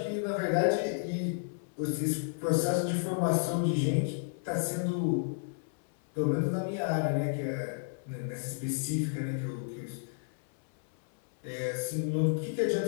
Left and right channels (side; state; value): right; silent; 57 dB below the other